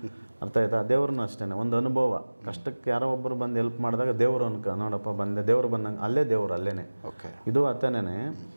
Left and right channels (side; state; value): both; inverted; correlation -1.00